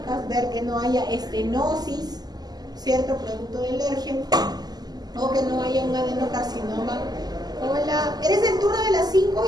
ver que no haya estenosis, ¿cierto? Producto del ERGE, o que no haya un adenocarcinoma. Hola, ¿eres del turno de las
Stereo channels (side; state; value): left; late; 0.20 ms